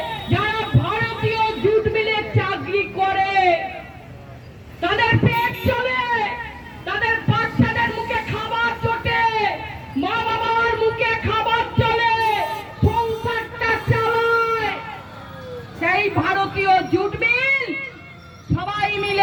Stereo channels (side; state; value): both; identical; correlation 1.00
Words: যারা ভারতীয় জুটমিলে চাকরি করে, তাদের পেট চলে, তাদের বাচ্চাদের মুখে খাবার চটে, মা বাবার মুখে খাবার চলে, সংসারটা চালায়। সেই ভারতীয় জুট মিল সবাই